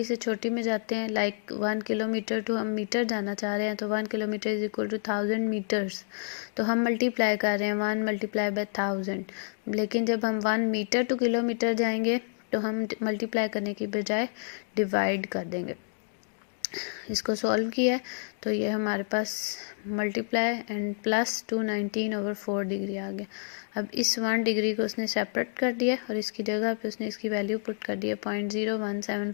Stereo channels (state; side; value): silent; right; 59 dB below the other